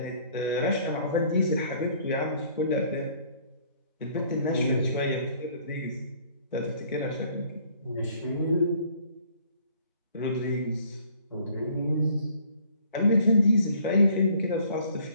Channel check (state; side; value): inverted; both; correlation -0.58